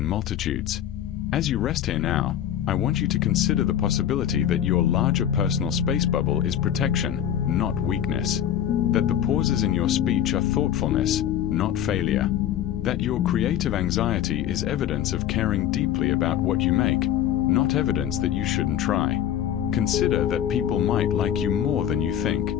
multitudes. As you rest here now, I want you to consider the possibility that your larger personal space bubble is protection, not weakness. That the pauses in your speech are thoughtfulness, not failure. That your creative anxiety is evidence of caring deeply about what you make, not evidence that you shouldn't try. Consider that people might like you more than you think.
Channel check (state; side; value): quieter; right; 10.4 dB